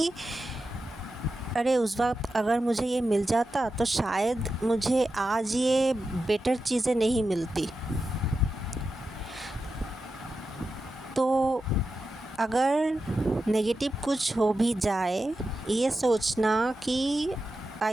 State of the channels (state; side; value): normal; both; correlation 0.90